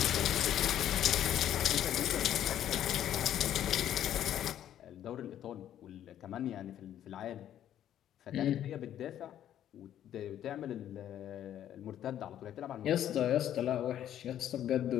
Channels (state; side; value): quieter; right; 11.0 dB